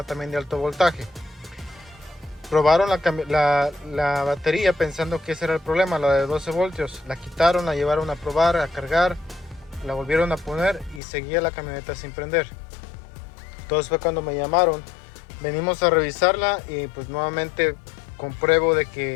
también de alto voltaje. Probaron la batería pensando que ese era el problema, la de 12 voltios. La quitaron, la llevaron a probar, a cargar, la volvieron a poner y seguía la camioneta sin prender. Entonces fue cuando me llamaron. Venimos a revisarla y pues nuevamente compruebo de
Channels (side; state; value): right; drops out; at 11.0 s